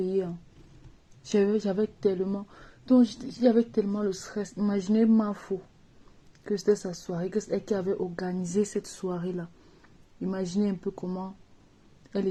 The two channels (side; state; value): both; identical; correlation 1.00